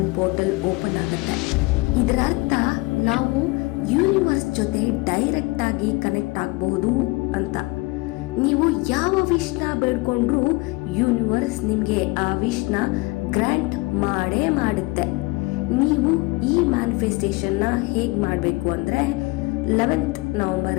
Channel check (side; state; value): right; quieter; 23.8 dB